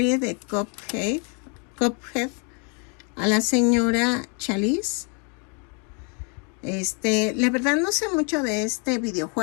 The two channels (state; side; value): quieter; right; 35.4 dB